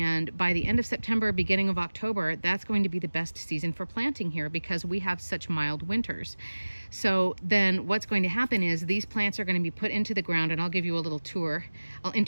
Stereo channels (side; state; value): both; inverted; correlation -1.00